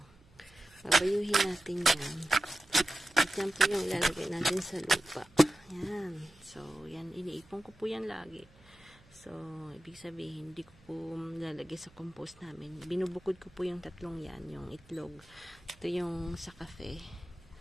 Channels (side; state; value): right; noise; hum, 28 dB below the sound